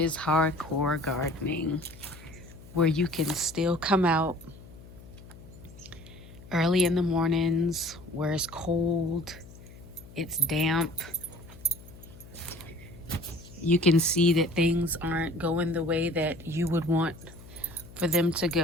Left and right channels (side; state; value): left; noise; hum, 19 dB below the sound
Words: hardcore gardening, where you can still come out early in the mornings, where it's cold, it's damp. You can see that things aren't going the way that you would want for them to